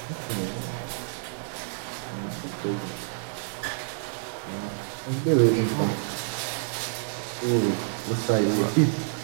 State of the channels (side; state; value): left; silent; 59 dB below the other